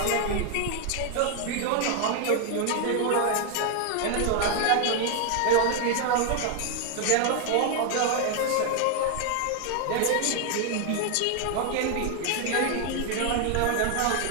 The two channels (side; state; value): both; different; correlation 0.00